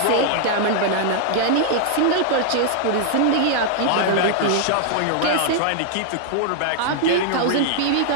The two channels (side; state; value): both; different; correlation 0.00